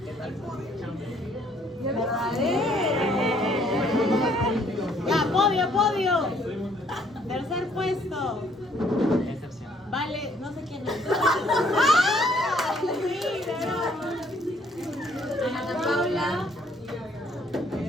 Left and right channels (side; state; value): both; normal; correlation 0.64